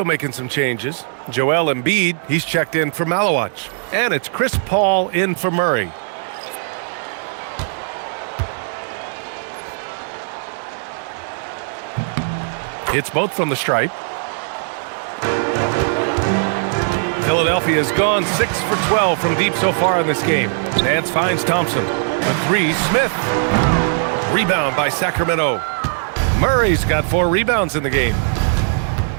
making some changes. Joel Embiid, he's checked in for Malawach. And it's Chris Paul in for Murray. Hits both from the stripe. Philadelphia has gone 6 for 12 from deep so far in this game. Nance finds Thompson. The 3, Smith. Rebound by Sacramento. Murray's got 4 rebounds in the game.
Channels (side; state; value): left; silent; digital silence